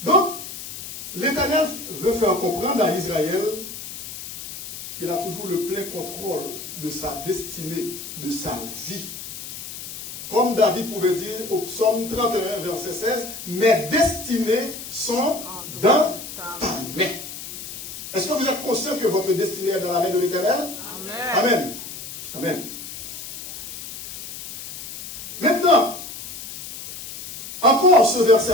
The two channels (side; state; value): left; noise; hiss, 10 dB below the sound